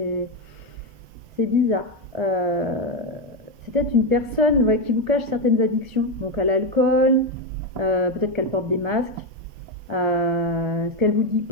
bizarre. C'est peut-être une personne qui vous cache certaines addictions, donc à l'alcool, peut-être qu'elle porte des masques. Ce qu'elle vous dit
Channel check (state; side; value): late; left; 1.7 ms